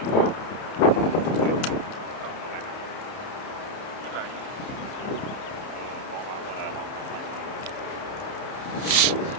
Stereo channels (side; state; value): right; late; 30 ms